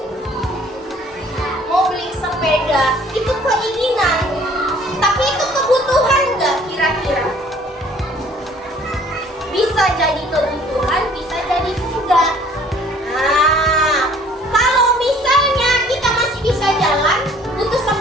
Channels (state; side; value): normal; both; correlation 0.55